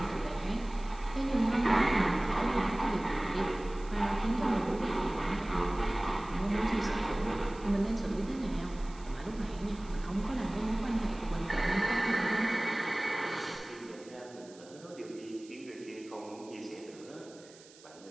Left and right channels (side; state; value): right; noise; hiss, 23 dB below the sound